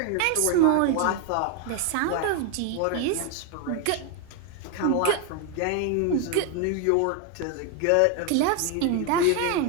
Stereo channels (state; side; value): different; both; correlation 0.01